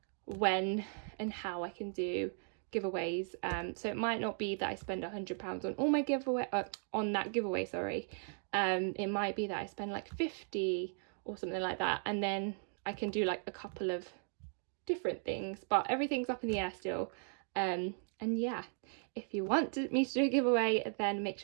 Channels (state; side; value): silent; left; 53 dB below the other